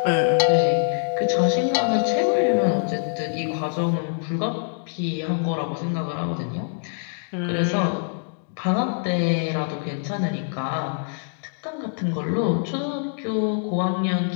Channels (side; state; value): right; silent; digital silence